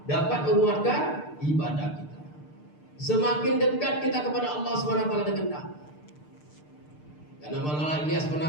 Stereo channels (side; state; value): right; late; 6.7 ms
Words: dapat menguatkan ibadah kita. Semakin dekat kita kepada Allah SWT dengan dakwah. Karena Maulana Ilyas pernah